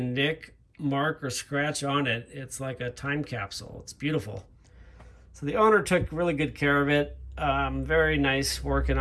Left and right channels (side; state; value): both; identical; correlation 1.00